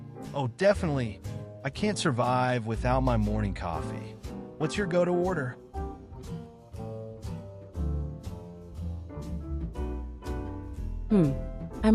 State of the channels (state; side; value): identical; both; correlation 1.00